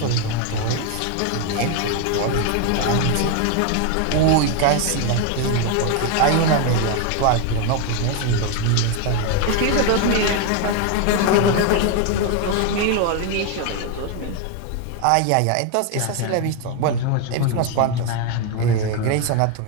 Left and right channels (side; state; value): both; different; correlation 0.01